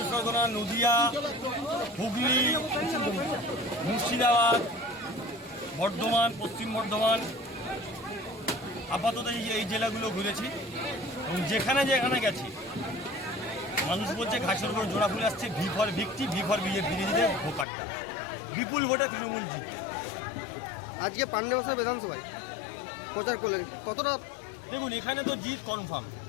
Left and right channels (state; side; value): drops out; right; at 17.7 s